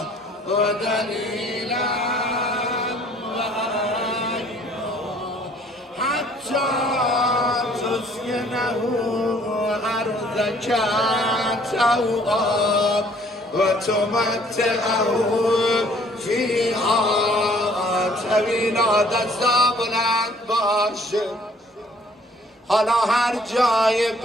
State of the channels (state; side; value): normal; both; correlation 0.58